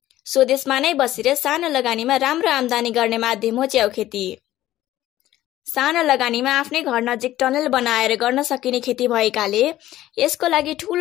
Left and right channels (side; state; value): right; quieter; 14.3 dB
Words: स्वदेशमा नै बसेर सानो लगानीमा राम्रो आम्दानी गर्ने माध्यम हो च्याउ खेती। सानो लगानीमा आफ्नै घर नजिक टनल बनाएर गर्न सकिने खेती भएकाले यसको लागि